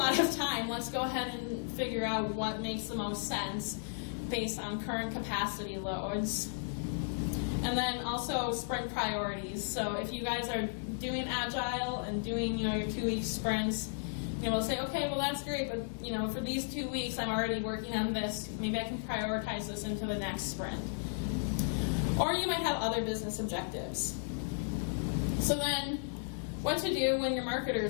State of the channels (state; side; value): silent; right; digital silence